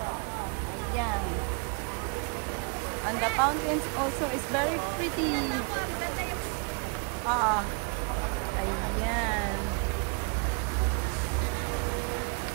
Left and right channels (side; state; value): left; quieter; 35.7 dB